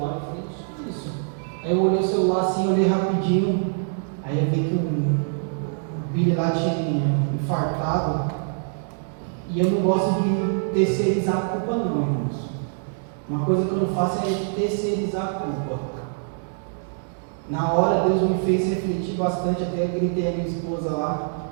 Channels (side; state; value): left; silent; digital silence